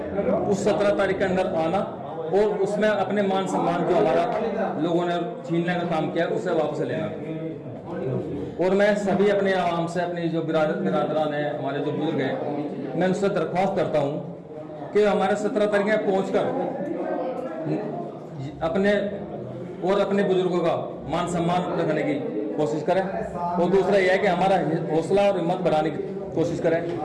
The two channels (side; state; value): both; identical; correlation 1.00